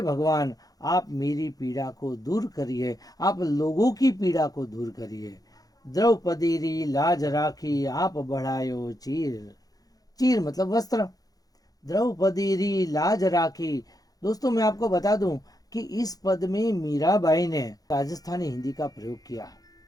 भगवान, आप मेरी पीड़ा को दूर करिए, आप लोगों की पीड़ा को दूर करिए। द्रौपदी री लाज राखी आप बढ़ायो चीर, चीर मतलब वस्त्र। द्रौपदी री लाज राखी। दोस्तों, मैं आपको बता दूं कि इस पद में मीराबाई ने राजस्थानी हिंदी का प्रयोग किया।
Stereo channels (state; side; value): late; right; 0.18 ms